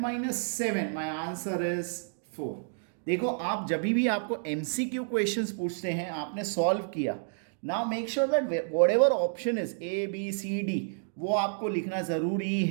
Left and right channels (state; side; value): silent; left; digital silence